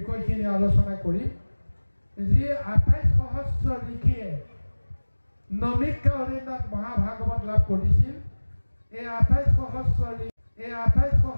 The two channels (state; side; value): inverted; both; correlation -1.00